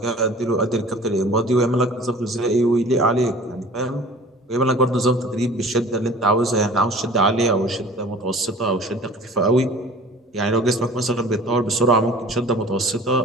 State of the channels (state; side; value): normal; both; correlation 0.45